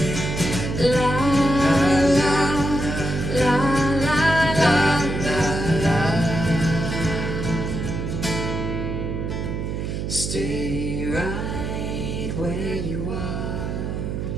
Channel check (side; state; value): right; noise; hum, 3 dB below the sound